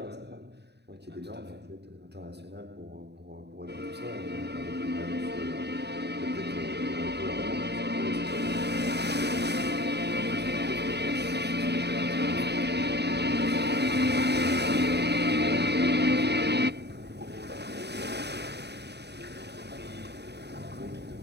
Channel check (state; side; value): late; left; 0.49 ms